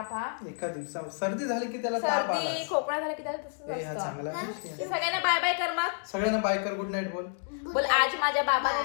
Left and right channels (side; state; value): right; silent; digital silence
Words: हा एका दिवसात सर्दी झाली की त्याला ताप आला. सर्दी खोकला झाला की त्याला तसंच हा असतं. चांगला आहे. तर सगळ्यांना बाय बाय कर मग. सगळ्यांना बाय कर. गुड नाईट बोल. बोल आज माझ्या बाबाने